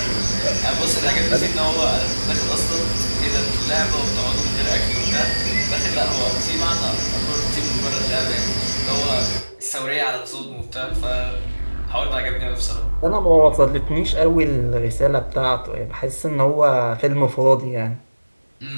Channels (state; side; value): inverted; both; correlation -1.00